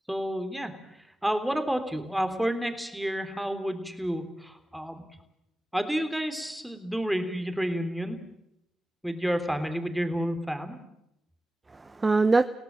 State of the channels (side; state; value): both; normal; correlation 0.95